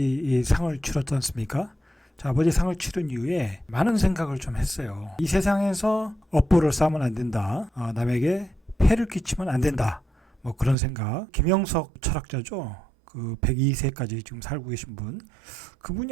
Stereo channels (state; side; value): drops out; left; at 10.8 s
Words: 상을 치렀지 않습니까? 자, 아버지 상을 치른 이후에 많은 생각을 좀 했어요. 이 세상에서 업보를 쌓으면 안 된다. 남에게 폐를 끼치면 안 된다. 뭐 그런 생각. 김영석 철학자죠. 그 102세까지 지금 살고 계신 분.